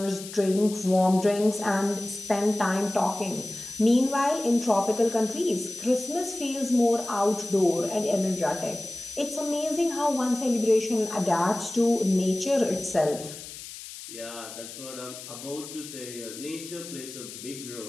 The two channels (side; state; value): left; noise; hiss, 13 dB below the sound